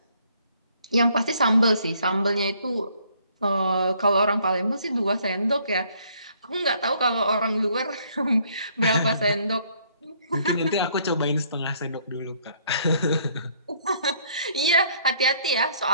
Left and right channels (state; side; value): inverted; both; correlation -0.64